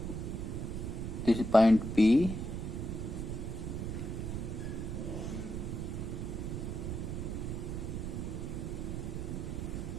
this is point P,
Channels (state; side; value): noise; right; rumble, 3 dB below the sound